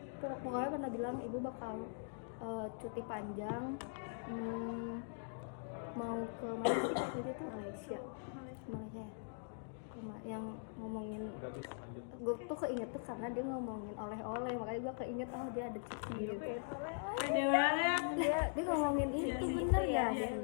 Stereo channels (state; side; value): silent; right; digital silence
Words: pokoknya pernah bilang ibu bakal cuti panjang, mau ke Malaysia gitu tuh. Malaysia yang ngomongin, gue tuh keinget tuh karena dia ngomongin oleh-oleh, makanya gue keinget dia ada cuti gitu. Ada banget. Dia ngomongin itu bener ya,